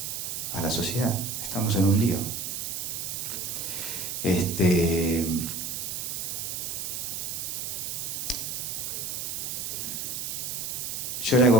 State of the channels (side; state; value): right; noise; hiss, 3 dB below the sound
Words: a la sociedad. Estamos en un lío. Yo le